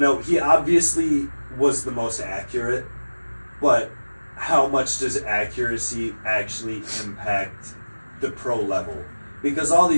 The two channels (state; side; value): inverted; both; correlation -1.00